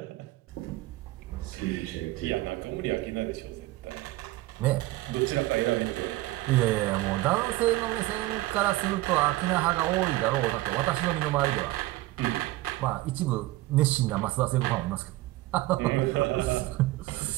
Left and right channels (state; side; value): quieter; left; 17.9 dB